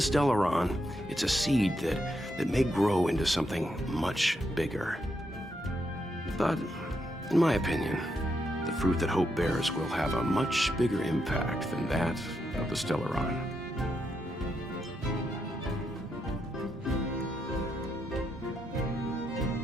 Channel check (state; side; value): normal; both; correlation 0.81